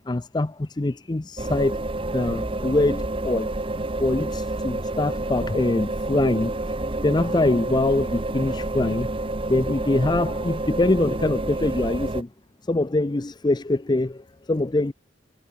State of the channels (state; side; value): normal; both; correlation 0.71